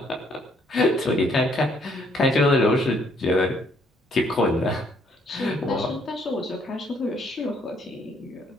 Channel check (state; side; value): normal; both; correlation 0.68